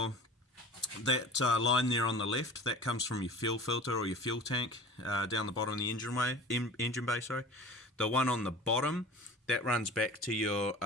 that line there on the left, that comes from your fuel filter or your fuel tank down the bottom of the engine bay. Sorry. The one on the bottom, that runs back to your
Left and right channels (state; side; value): normal; both; correlation 0.39